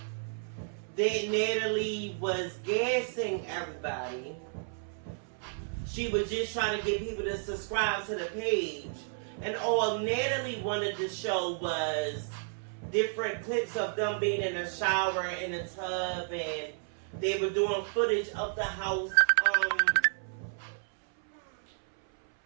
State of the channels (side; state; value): left; silent; 57 dB below the other